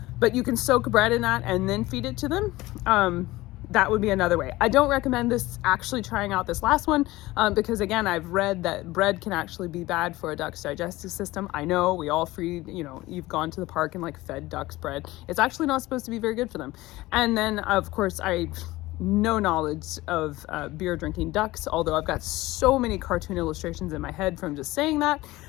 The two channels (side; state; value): right; quieter; 18.8 dB